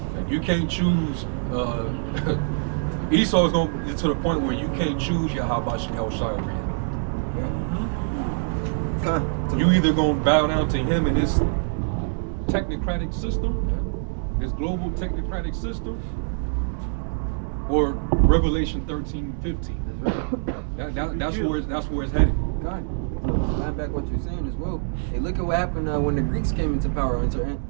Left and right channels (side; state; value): left; silent; digital silence